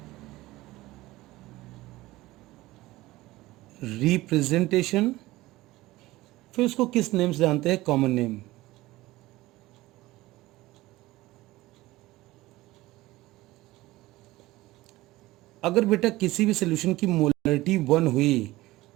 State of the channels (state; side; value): quieter; left; 18.3 dB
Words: रिप्रेजेंटेशन, फिर उसको किस नेम से जानते हैं, कॉमन नेम। अगर बेटा किसी भी सोल्यूशन की मोलरिटी 1 हुई